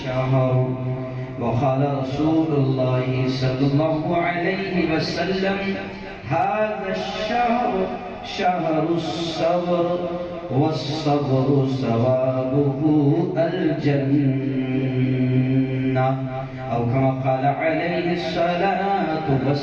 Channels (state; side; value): identical; both; correlation 1.00